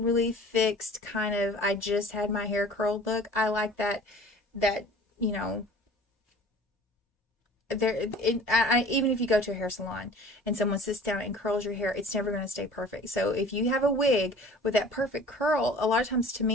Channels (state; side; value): normal; both; correlation 0.46